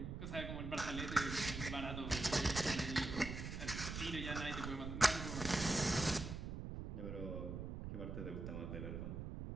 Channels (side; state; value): right; noise; rumble, 5 dB below the sound